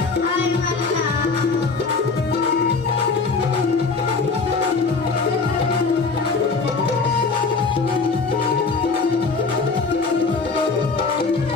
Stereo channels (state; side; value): quieter; right; 4.3 dB